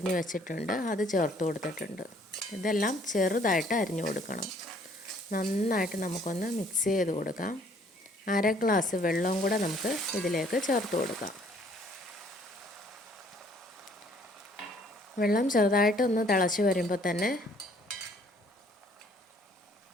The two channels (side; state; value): both; normal; correlation 0.60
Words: വെച്ചിട്ടുണ്ട്, അത് ചേർത്ത് കൊടുത്തിട്ടുണ്ട്. ഇതെല്ലാം ചെറുതായിട്ട് അരിഞ്ഞു കൊടുക്കണം. നന്നായിട്ട് നമുക്കൊന്ന് മിക്സ് ചെയ്ത് കൊടുക്കാം. 1/2 ഗ്ലാസ് വെള്ളവും കൂടെ നമുക്ക് ഇതിലേക്ക് ചേർത്ത് കൊടുക്കാം. വെള്ളം ചെറുതായിട്ടൊന്ന് തിളച്ച് വരുമ്പോൾ തന്നെ